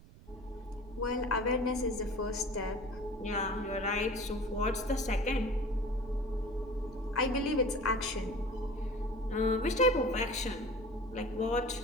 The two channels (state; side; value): noise; right; rumble, 21 dB below the sound